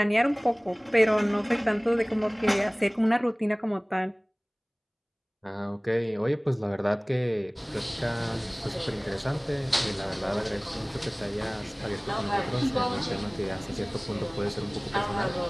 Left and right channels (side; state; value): both; identical; correlation 1.00